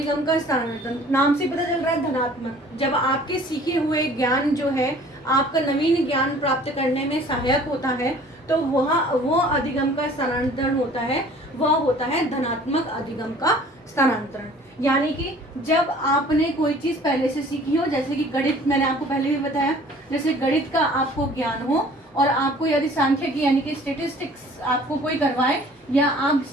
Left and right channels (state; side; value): normal; both; correlation 0.51